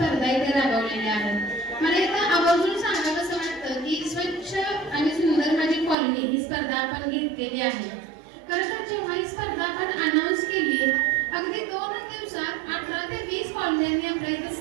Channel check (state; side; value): drops out; left; at 6.0 s